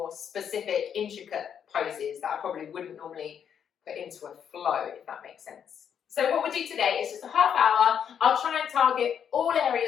specific, intricate poses that I probably wouldn't normally put into a flow, if that makes sense. So what we'll do today is just a half hour. I'll try and target all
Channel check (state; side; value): quieter; right; 8.2 dB